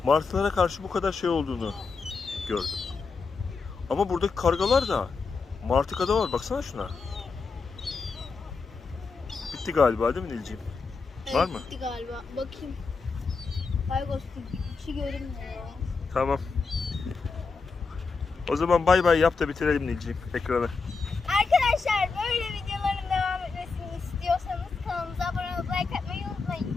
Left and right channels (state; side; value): quieter; right; 4.6 dB